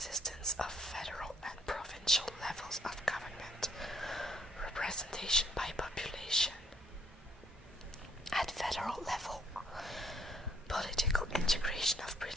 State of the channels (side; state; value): both; normal; correlation 0.66